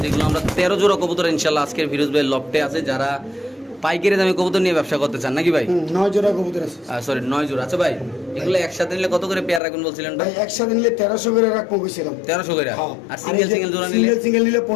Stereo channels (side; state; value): right; drops out; at 9.6 s